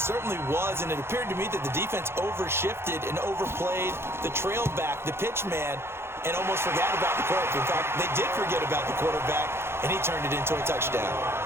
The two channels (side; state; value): left; late; 0.12 ms